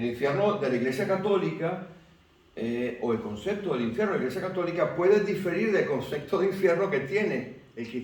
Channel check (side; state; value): both; identical; correlation 1.00